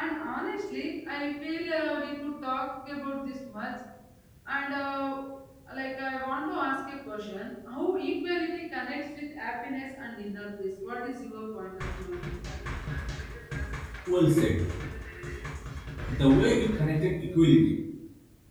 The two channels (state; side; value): identical; both; correlation 1.00